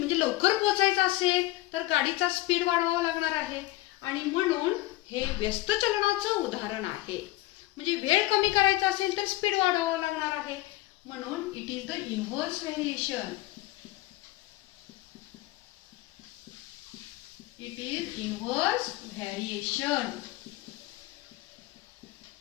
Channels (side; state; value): right; quieter; 17.7 dB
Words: लवकर पोहोचायचं असेल तर गाडीचा स्पीड वाढवावा लागणार आहे, आणि म्हणून हे व्यस्त चलनाचं उदाहरण आहे. म्हणजे वेळ कमी करायचा असेल तर स्पीड वाढवावा लागणार आहे, म्हणून it is the inverse variation. It is inverse variation.